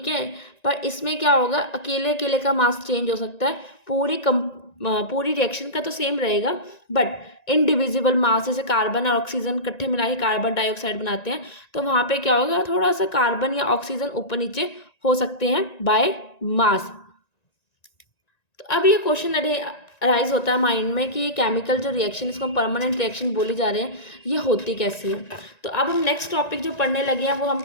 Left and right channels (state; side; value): late; right; 1.9 ms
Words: है, पर इसमें क्या होगा, अकेले अकेले का मास चेंज हो सकता है, पूरी रिएक्शन का तो सेम रहेगा, बट इनडिविजिबल मास, जैसे कार्बन और ऑक्सीजन इकट्ठे मिला के कार्बन डाइऑक्साइड बनाते हैं, तो वहाँ पे क्या होगा, थोड़ा सा कार्बन या ऑक्सीजन ऊपर नीचे हो सकते हैं बाय मास। तो अब ये क्वेश्चन अराइज होता है माइंड में कि ये केमिकल जो रिएक्शन, इसको हम परमानेंट रिएक्शन बोली जा रहे हैं, ये होती कैसी है। तो अब हम नेक्स्ट टॉपिक जो पढ़ने लगे हैं वो हम